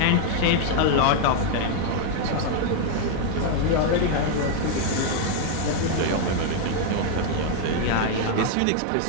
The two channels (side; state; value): both; different; correlation 0.00